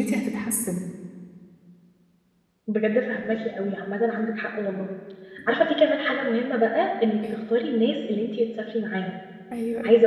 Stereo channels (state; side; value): identical; both; correlation 1.00